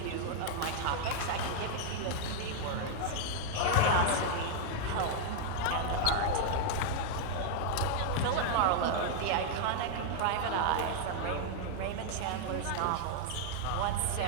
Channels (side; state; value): both; different; correlation 0.00